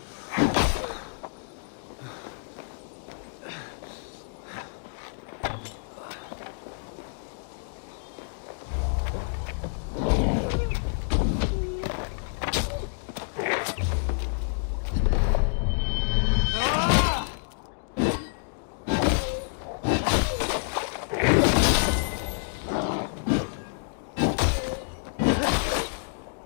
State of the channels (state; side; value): silent; right; digital silence